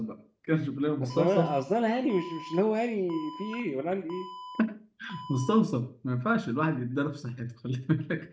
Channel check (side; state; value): both; identical; correlation 1.00